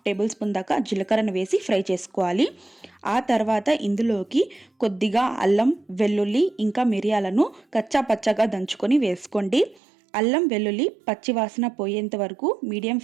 టేబుల్ స్పూన్ దాకా జీలకర్రను వేసి ఫ్రై చేసుకోవాలి. ఆ తర్వాత ఇందులోకి కొద్దిగా అల్లం, వెల్లుల్లి ఇంకా మిరియాలను కచ్చా పచ్చగా దంచుకొని వేసుకోండి. అల్లం వెల్లుల్లి పచ్చివాసన పోయేంత వరకు మీడియం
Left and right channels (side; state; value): left; drops out; at 9.8 s